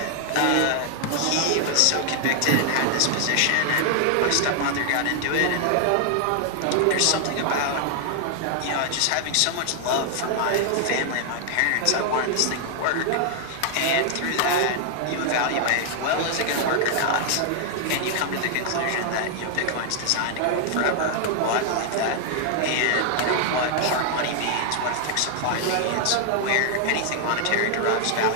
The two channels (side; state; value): both; different; correlation 0.00